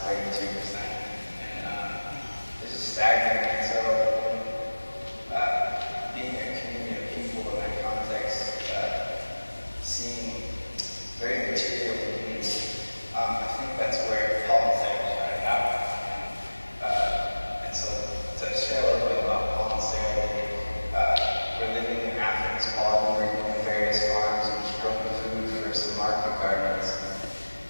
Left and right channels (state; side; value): inverted; both; correlation -1.00